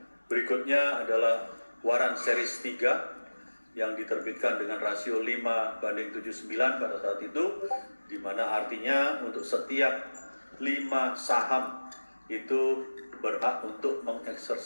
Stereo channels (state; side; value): inverted; both; correlation -1.00